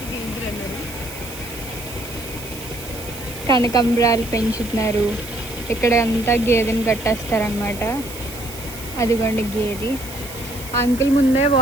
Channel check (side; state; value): right; noise; hiss, 14 dB below the sound